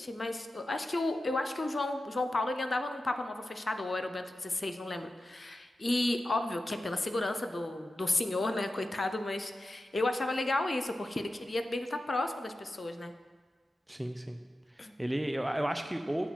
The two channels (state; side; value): normal; both; correlation 0.93